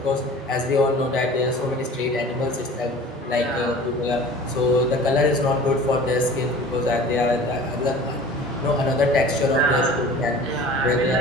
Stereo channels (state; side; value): normal; both; correlation 0.42